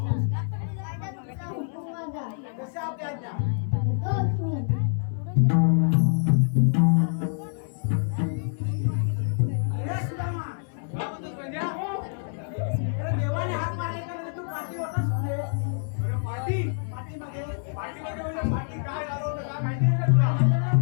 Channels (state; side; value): silent; right; digital silence